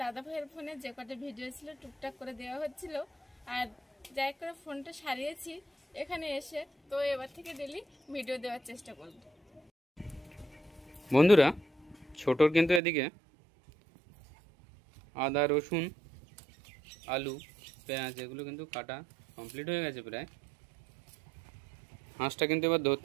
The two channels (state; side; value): drops out; left; at 12.8 s